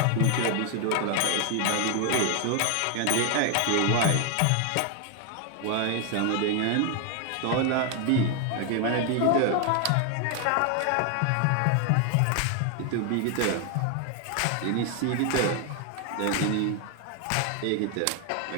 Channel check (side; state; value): both; different; correlation 0.01